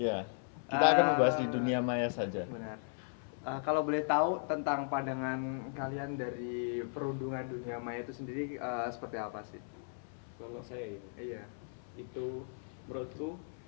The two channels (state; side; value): silent; right; 54 dB below the other